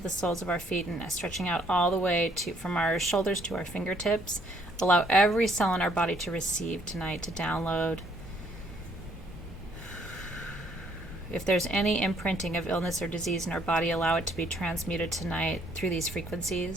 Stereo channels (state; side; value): normal; both; correlation 0.66